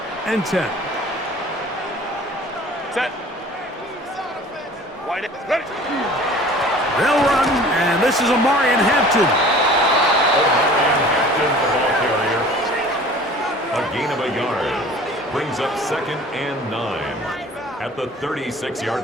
and 10. Set. Wide ready. They'll run, and this is Omarion Hampton. Omarion Hampton, the ball carrier. A gain of a yard. Brings up 2nd and 9 at the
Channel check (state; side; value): normal; both; correlation 0.46